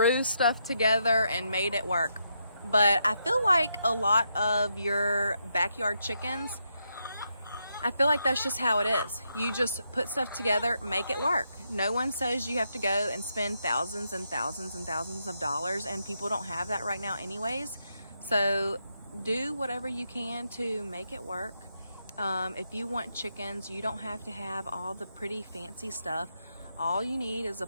stuff together and made it work. But I feel like a lot of your backyard chickens, I feel like that's just how it is. You just put stuff together, make it work. No one says you have to go and spend thousands and thousands and thousands of dollars, and people don't have that right now anyways. So do whatever you can to make it work. If you want chickens, you don't have to have all the pretty fancy stuff. All you need is a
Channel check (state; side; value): inverted; both; correlation -0.80